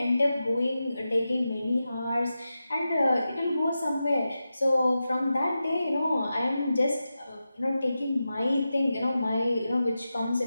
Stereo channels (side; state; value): both; inverted; correlation -0.92